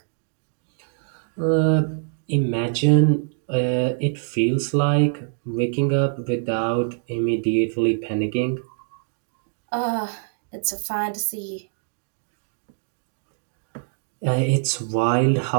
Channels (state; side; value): silent; left; digital silence